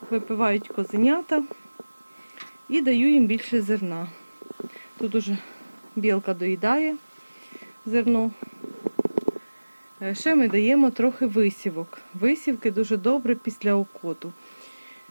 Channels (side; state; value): both; inverted; correlation -1.00